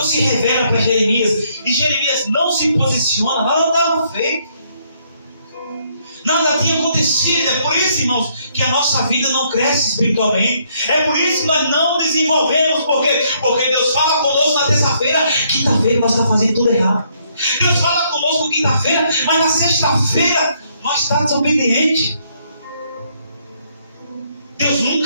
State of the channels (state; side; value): inverted; both; correlation -0.70